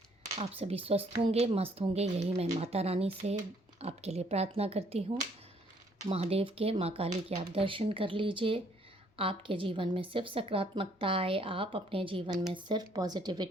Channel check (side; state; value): both; normal; correlation 0.65